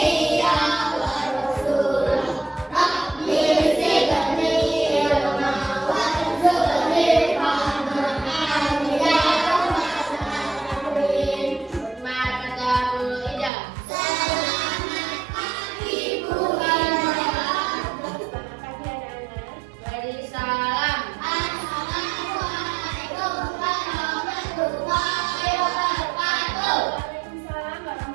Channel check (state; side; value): drops out; left; at 13.5 s